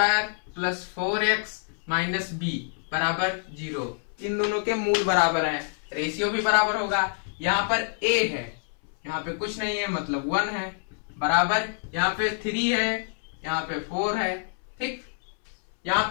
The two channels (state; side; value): silent; right; 60 dB below the other